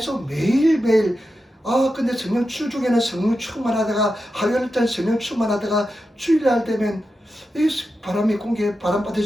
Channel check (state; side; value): normal; both; correlation 0.90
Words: 매일매일 근데 성령 주중에는 성령 충만하다가 화요일날 성령 충만하다가 주일날 되면 이 바람이 공기에 바람